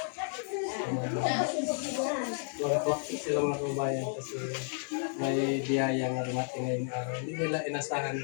12 o'clock sila mga kabayan kasi may biyaya nga dumating ngayong araw. Hindi nila inasahan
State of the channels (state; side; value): silent; right; 56 dB below the other